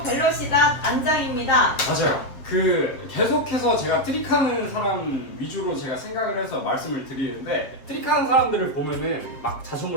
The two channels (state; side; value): late; right; 7.5 ms